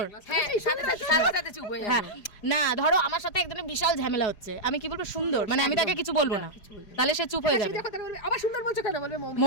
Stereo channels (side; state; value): right; late; 4.9 ms